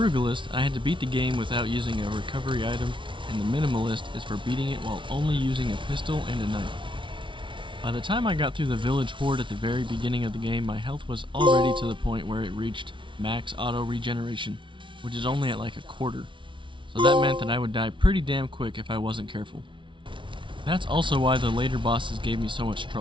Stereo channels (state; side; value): late; left; 0.24 ms